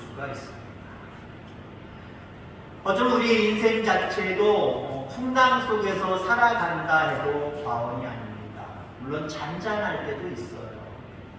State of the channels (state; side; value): identical; both; correlation 1.00